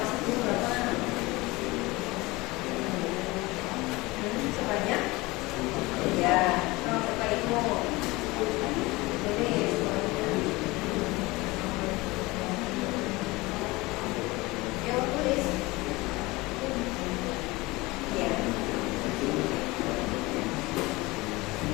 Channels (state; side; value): quieter; right; 22.0 dB